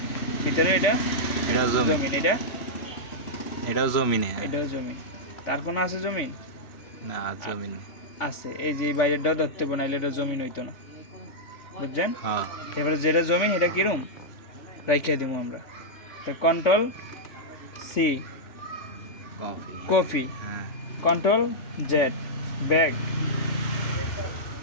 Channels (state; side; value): late; right; 3.5 ms